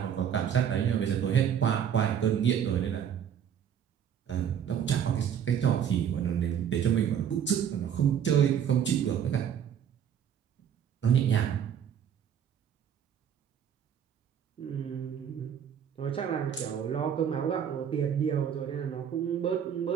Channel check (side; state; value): left; quieter; 8.7 dB